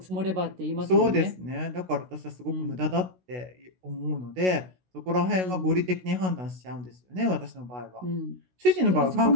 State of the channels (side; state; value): left; late; 16 ms